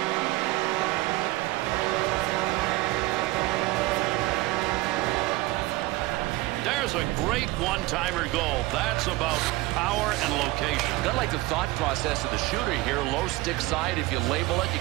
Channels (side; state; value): left; quieter; 19.9 dB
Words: There's a great one-timer goal. That's about power and location. Kind of like the thought process of the shooter here. Low stick side. If you label it, you